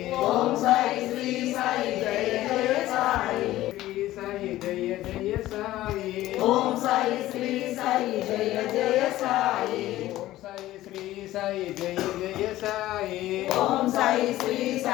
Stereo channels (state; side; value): quieter; right; 15.5 dB